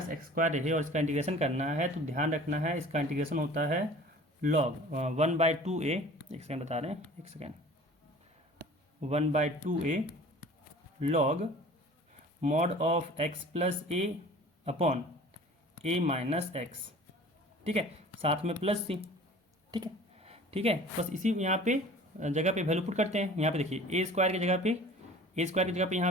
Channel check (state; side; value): normal; both; correlation 0.45